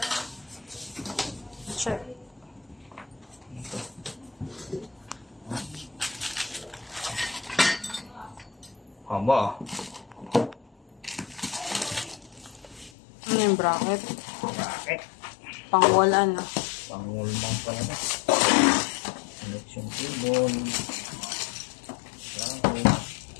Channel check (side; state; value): right; drops out; at 12.9 s